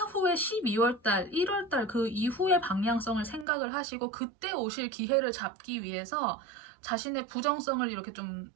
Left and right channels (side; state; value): left; drops out; at 3.5 s